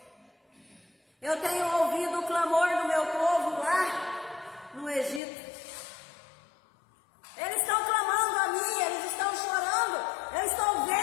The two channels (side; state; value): right; drops out; at 5.2 s